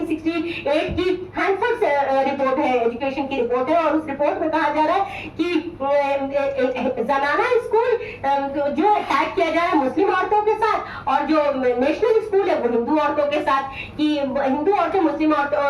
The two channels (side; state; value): both; identical; correlation 1.00